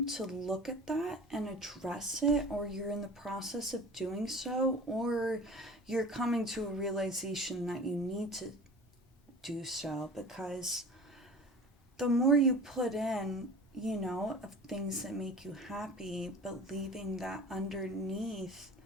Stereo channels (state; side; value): normal; both; correlation 0.39